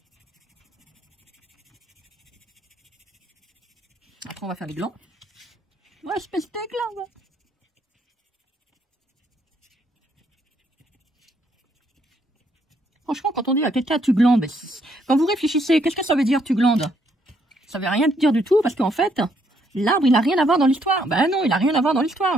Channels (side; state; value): both; normal; correlation 0.71